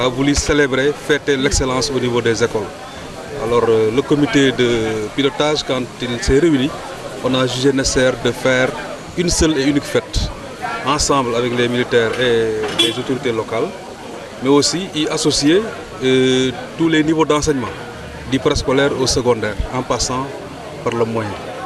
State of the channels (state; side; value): identical; both; correlation 1.00